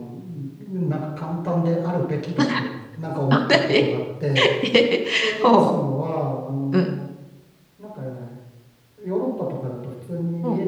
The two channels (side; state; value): both; identical; correlation 1.00